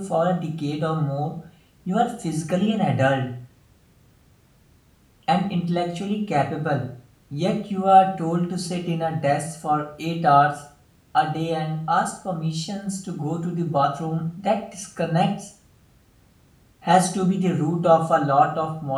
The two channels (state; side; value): identical; both; correlation 1.00